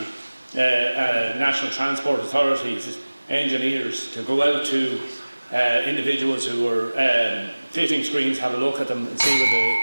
the National Transport Authorities, engineers, to go out to individuals who are fitting screens, have a look at them and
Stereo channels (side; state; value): both; inverted; correlation -1.00